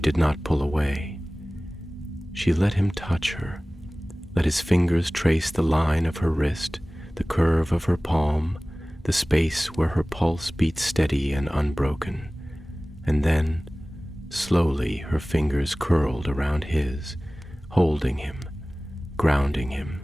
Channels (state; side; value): normal; both; correlation 0.98